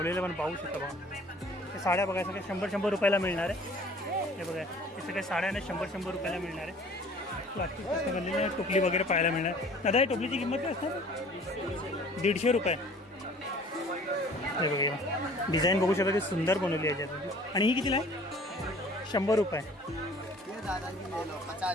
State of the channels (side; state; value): both; normal; correlation 0.50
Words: पण पाहू शकता बघा. हे साड्या बघा सगळ्या 100 रुपयाला मिळणार आहे. हे बघा हे सगळ्या साड्याने 100 रुपयाला मिळणार आहे. प्लास्टिक बनलेली टोपली वगैरे पाहायला मिळणार. दादा या टोपलीची किंमत काय असणार? 150 रुपये. हे बघा डिझाईन बघू शकता, सुंदर बनवली आहे याच्यात. आणि ही कितीला आहे? 100 रुपये.